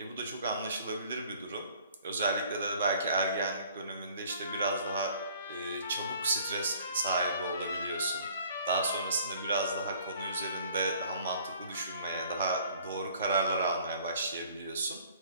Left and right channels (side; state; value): both; inverted; correlation -0.55